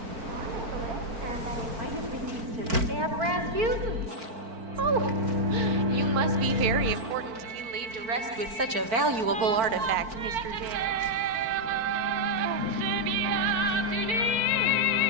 Oh, you must be very important to be laid to rest with such a valuable artifact, Mr. James.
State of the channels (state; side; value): late; left; 4.5 ms